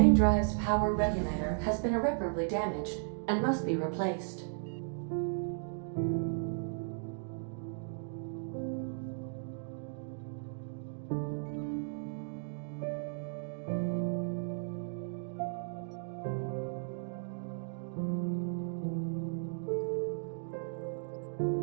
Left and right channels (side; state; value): left; silent; digital silence